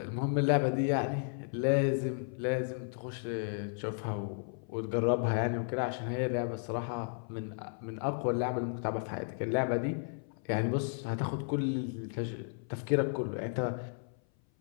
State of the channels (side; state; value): right; silent; 55 dB below the other